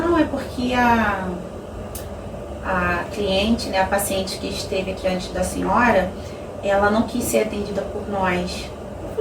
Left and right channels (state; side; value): identical; both; correlation 1.00